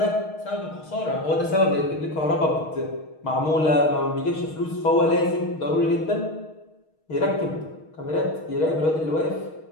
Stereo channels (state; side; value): late; right; 6.4 ms